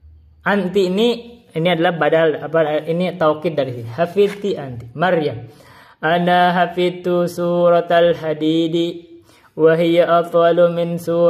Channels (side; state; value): both; identical; correlation 1.00